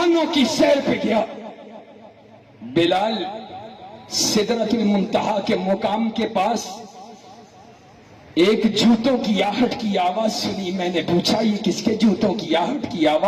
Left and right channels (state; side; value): identical; both; correlation 1.00